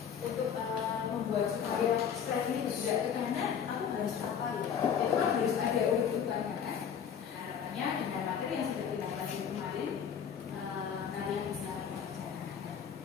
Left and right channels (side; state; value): right; quieter; 7.8 dB